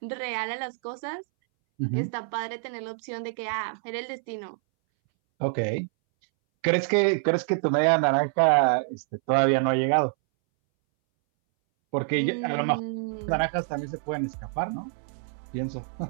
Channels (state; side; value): silent; left; 60 dB below the other